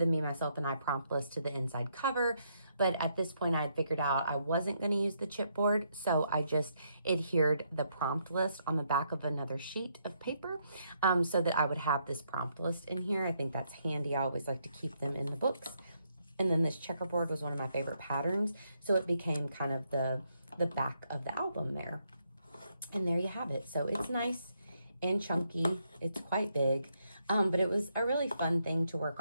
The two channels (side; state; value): both; inverted; correlation -0.76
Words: Me, Myself, and I prompt list to the inside cover. But at this point, I had figured out I wasn't going to use the chipboard, so I just adhered the prompt list on the back of another sheet of paper so that I would have this prompt list in here. I think that's handy. I always like to keep them in the books. And then this checkerboard was one of my favorite patterns, so it became kind of the back of the album there. And there you have it. So it's nice and chunky. It's quite big, but it was a really fun thing to work